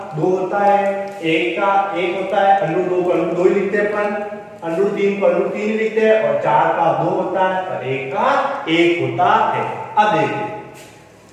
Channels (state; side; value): identical; both; correlation 1.00